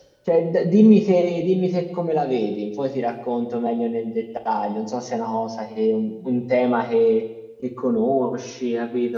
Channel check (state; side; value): identical; both; correlation 1.00